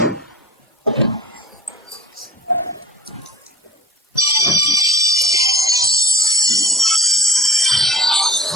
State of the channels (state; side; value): normal; both; correlation 0.44